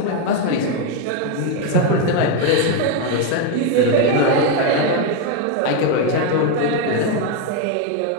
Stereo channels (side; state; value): both; different; correlation 0.02